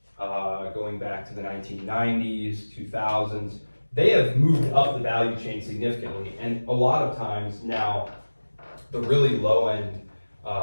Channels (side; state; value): both; inverted; correlation -1.00